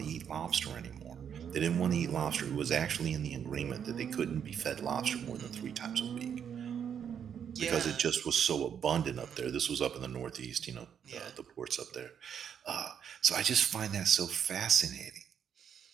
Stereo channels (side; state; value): left; quieter; 8.2 dB